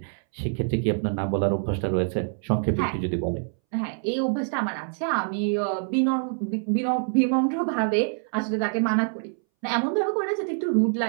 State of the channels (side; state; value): left; silent; 61 dB below the other